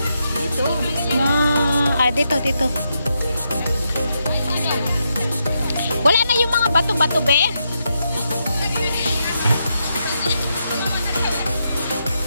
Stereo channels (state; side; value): inverted; both; correlation -0.83